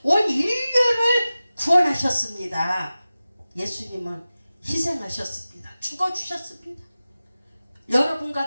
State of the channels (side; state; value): both; inverted; correlation -0.96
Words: 온 인류를 구원하셨습니다. 예수님은 희생하셨습니다. 죽어주셨습니다. 여러분과